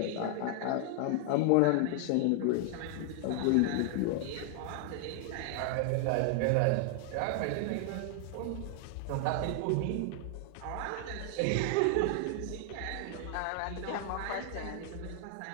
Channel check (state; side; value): different; both; correlation 0.00